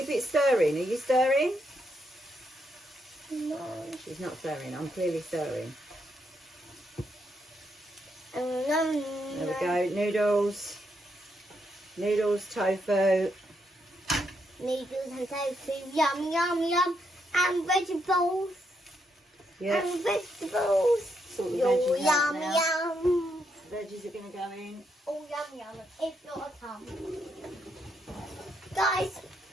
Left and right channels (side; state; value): both; normal; correlation 0.79